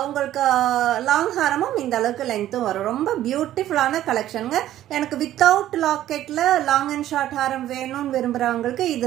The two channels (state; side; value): quieter; left; 12.9 dB